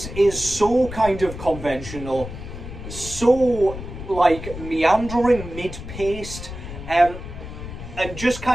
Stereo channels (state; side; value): noise; left; rumble, 10 dB below the sound